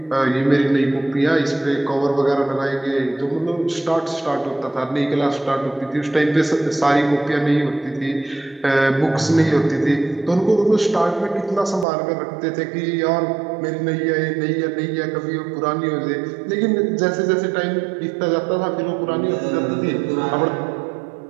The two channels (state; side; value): drops out; left; at 11.9 s